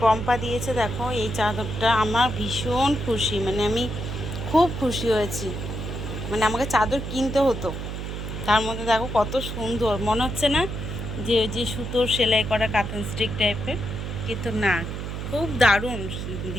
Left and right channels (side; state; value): right; noise; hum, 6 dB below the sound